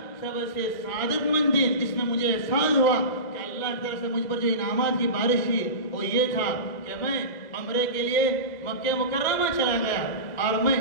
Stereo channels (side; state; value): right; late; 2.0 ms